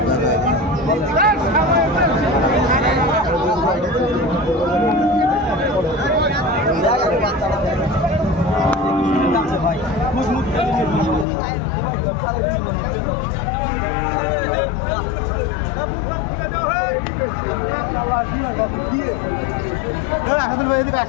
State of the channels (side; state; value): right; drops out; at 11.2 s